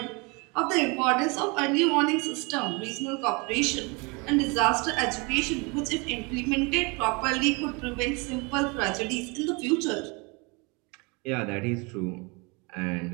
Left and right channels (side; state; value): left; quieter; 29.2 dB